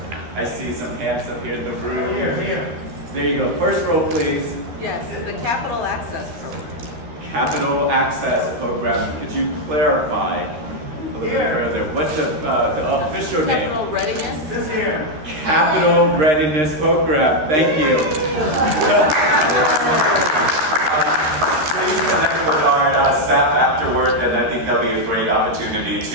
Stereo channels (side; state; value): left; late; 13 ms